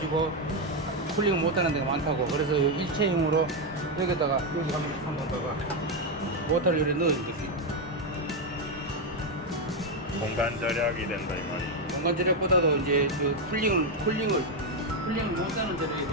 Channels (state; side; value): normal; both; correlation 0.05